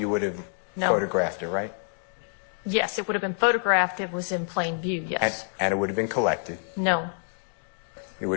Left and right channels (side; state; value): right; silent; digital silence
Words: would have photographed it, right? Yes, it would have been photographed. It was in plain view, yes. And it would have been collected. No. It would